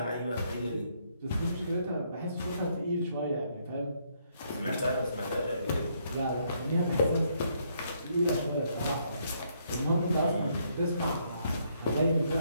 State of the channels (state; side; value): inverted; both; correlation -0.72